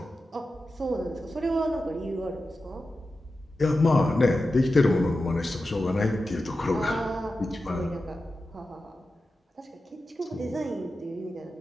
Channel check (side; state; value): both; normal; correlation 0.92